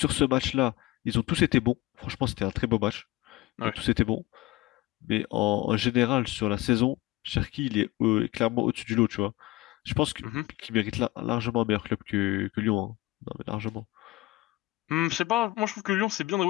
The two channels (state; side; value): quieter; right; 19.5 dB